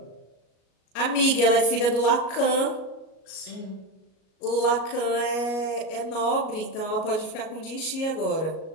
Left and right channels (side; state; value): right; late; 37 ms